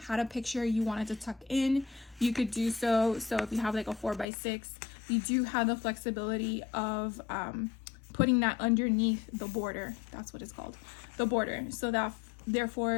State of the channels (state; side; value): drops out; right; at 4.2 s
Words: a picture you wanted to tuck in, you could do so. So if you have like a 4x6, you do have the flexibility of putting that underneath the border. That's what it's called, the border. So that